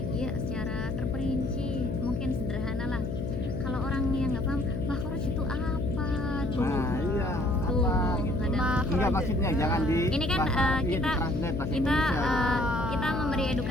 ya secara terperinci, mungkin sederhana lah. Kalau orang yang nggak paham makhraj itu apa tuh. Nah, iya, Tuh, apa gitu. ada. Enggak, maksudnya jangan di Ini kan bahasa Arab, iya, kita ditranslate bahasa kita Indonesia gitu. kita memberi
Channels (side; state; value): left; noise; hum, 3 dB below the sound